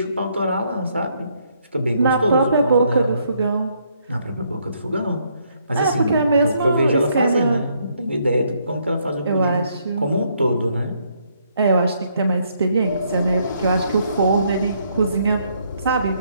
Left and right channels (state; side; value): inverted; both; correlation -0.71